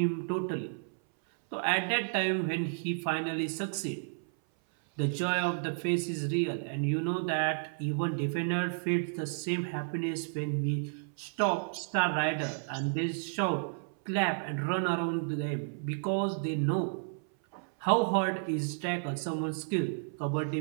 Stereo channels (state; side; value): silent; left; 56 dB below the other